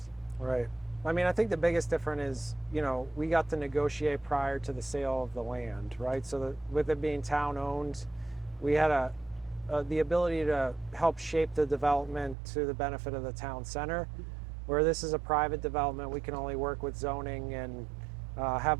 Right. I mean, I think the biggest difference is, you know, we got to negotiate prior to the sale of the land, right? So with it being town owned, we had the ability to help shape the development to the benefit of the town center. Where this is a private development, we can only work with zoning and have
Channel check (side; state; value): left; drops out; at 12.4 s